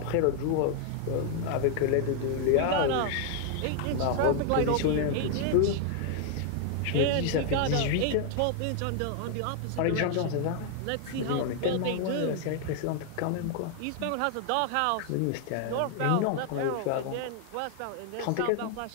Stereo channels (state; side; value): different; both; correlation 0.00